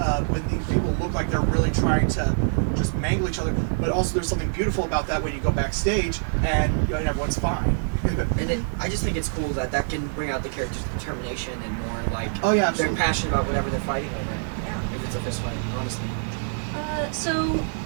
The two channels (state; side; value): silent; left; 62 dB below the other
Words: these people look like they're really trying to just mangle each other. But also there's something beautiful about that when you go backstage and everyone's fine. And then I just think it's cool that can bring out the character's determination and more like they're passionate about whatever they're fighting over. Yeah. If it's a fist fight, honestly. So